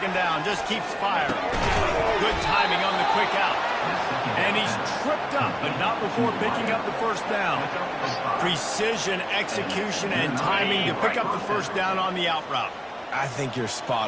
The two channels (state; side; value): identical; both; correlation 1.00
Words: down, just keeps firing. Good timing on the quick out. And he's tripped up, but not before picking up the first down. Precision, execution, and timing to pick up the first down on the out route. I think you're